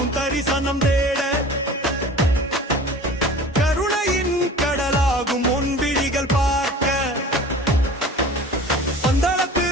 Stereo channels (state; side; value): normal; both; correlation 0.41